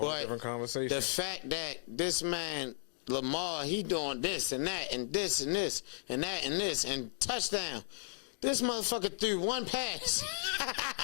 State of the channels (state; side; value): silent; right; digital silence